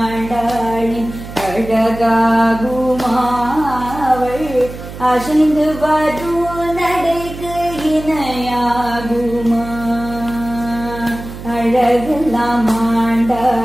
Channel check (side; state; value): right; noise; hum, 12 dB below the sound